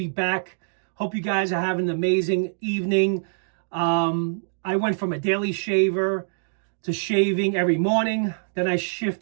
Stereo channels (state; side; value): silent; left; digital silence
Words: back. Hope you guys are having an amazing evening. I went from a daily shaver to shaving every morning. Then I